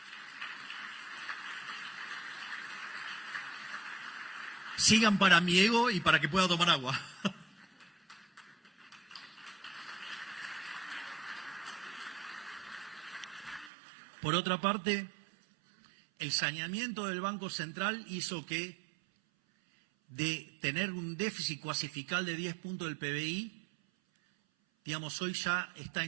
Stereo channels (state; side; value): drops out; left; at 13.7 s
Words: Sigan para mi ego y para que pueda tomar agua. Por otra parte, el saneamiento del Banco Central hizo que de tener un déficit cuasifical de 10 puntos del PBI, digamos, hoy ya está